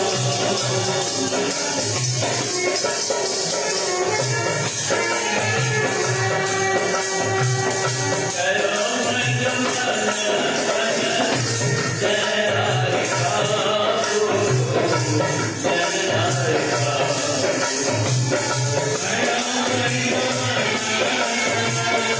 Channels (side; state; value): both; identical; correlation 1.00